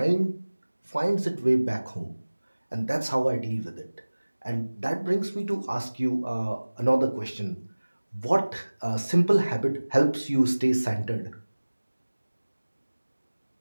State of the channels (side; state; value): both; inverted; correlation -1.00